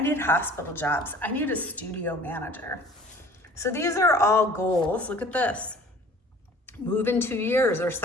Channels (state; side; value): normal; both; correlation 0.49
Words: need hospital jobs. I need a studio manager. So these are all goals. Look at this. Move in 2 years or